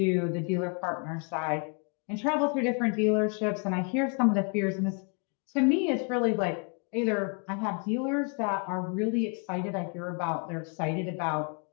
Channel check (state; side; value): quieter; right; 37.4 dB